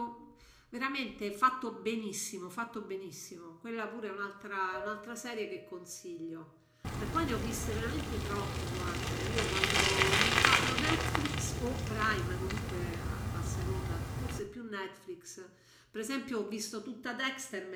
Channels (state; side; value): identical; both; correlation 1.00